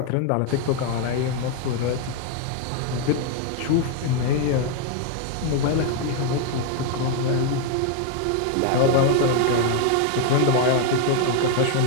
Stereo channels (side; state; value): both; different; correlation 0.00